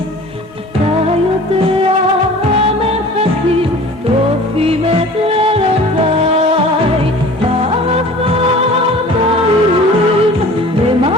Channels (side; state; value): both; normal; correlation 0.44